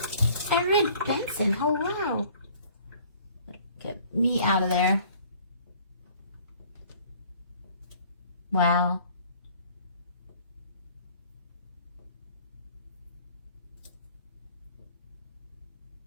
Erin Benson, hello. Get me out of there. Wow.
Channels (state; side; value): inverted; both; correlation -0.54